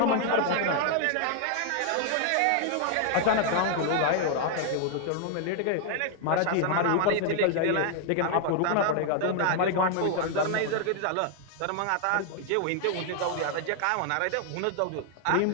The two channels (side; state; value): both; different; correlation 0.00